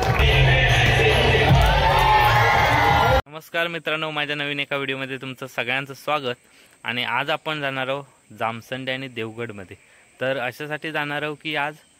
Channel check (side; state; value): both; identical; correlation 1.00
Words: मित्रांनो, माझ्या नवीन एका व्हिडिओमध्ये तुमचं सगळ्यांचं स्वागत। आणि आज आपण जाणार आहोत जामसंडे आणि देवगडमध्ये। तर अशासाठी जाणार आहोत की आज